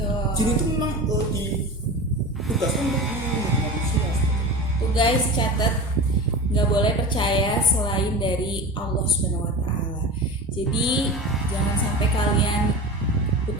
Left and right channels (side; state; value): both; normal; correlation 0.30